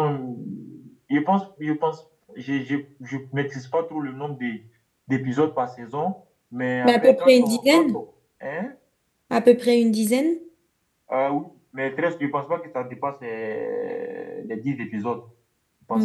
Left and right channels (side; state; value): both; identical; correlation 1.00